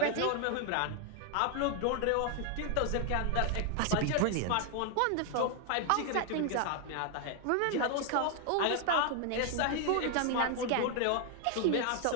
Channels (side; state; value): both; different; correlation 0.00